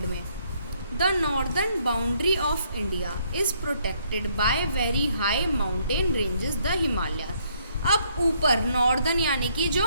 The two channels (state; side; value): inverted; both; correlation -0.69